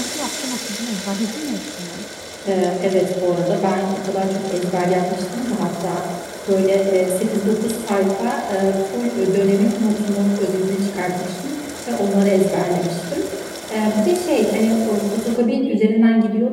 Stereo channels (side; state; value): both; identical; correlation 1.00